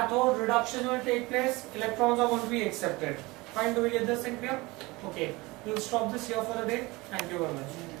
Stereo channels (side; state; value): left; quieter; 22.7 dB